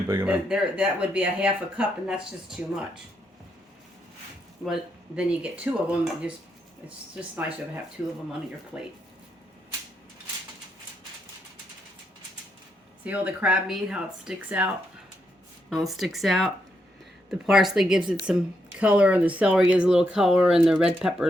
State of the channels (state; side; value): normal; both; correlation 0.80